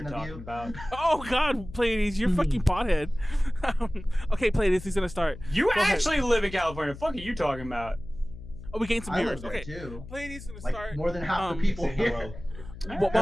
impersonation of talking you. about. Oh God, Pleiades, you're fucking pothead. Okay, Pleiades, he's gonna start. You Go ahead. actually live in California. What the fuck are you talking about? Oh, we gained some I viewers. live there Okay, too. Pleiades is gonna Like start. more than half the people Say here. hello. While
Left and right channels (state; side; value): noise; left; hum, 14 dB below the sound